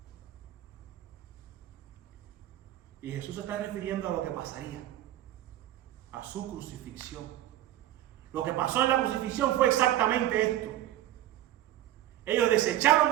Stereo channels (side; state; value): left; quieter; 13.4 dB